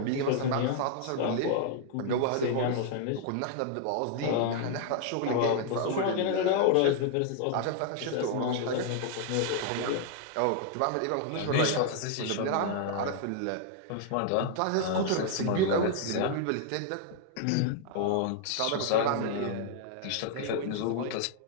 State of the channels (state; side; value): different; both; correlation 0.00